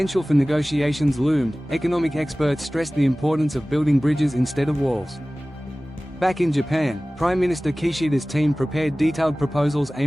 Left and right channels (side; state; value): both; normal; correlation 0.98